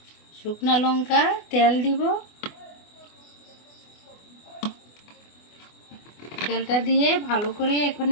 শুকনা লঙ্কা, তেল দিব। তেলটা দিয়ে ভালো করে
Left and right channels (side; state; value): right; late; 24 ms